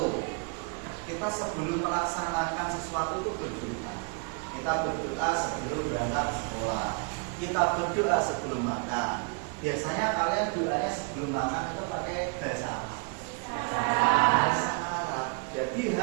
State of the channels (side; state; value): left; quieter; 35.5 dB